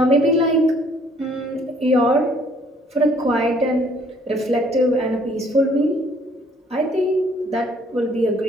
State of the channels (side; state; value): both; normal; correlation 0.61